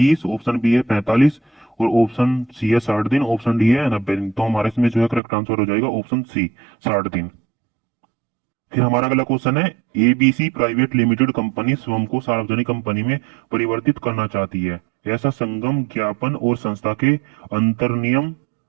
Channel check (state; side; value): drops out; left; at 5.2 s